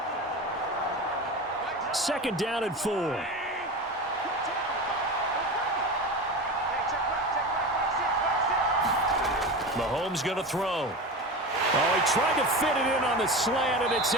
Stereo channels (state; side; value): normal; both; correlation 0.27